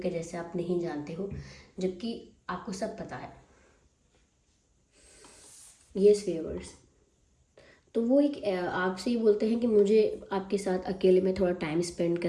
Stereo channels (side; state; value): both; identical; correlation 1.00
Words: जैसे आप नहीं जानते हो, जबकि आपको सब पता है। यस व्यूअर्स, तो वो एक आपसे ये बोलते हैं कि मुझे आपके साथ अकेले में थोड़ा टाइम स्पेंड